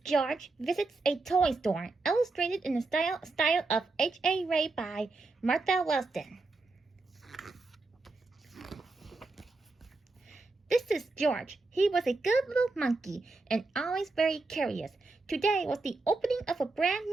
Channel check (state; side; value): quieter; left; 3.5 dB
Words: George visits a toy store, illustrated in the style of H.A. Ray by Martha Wellston. This is George. He was a good little monkey and always very curious. Today was the opening of a brand